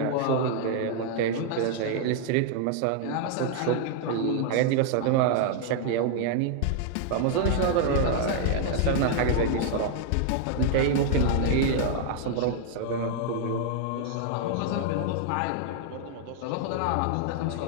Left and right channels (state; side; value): different; both; correlation 0.00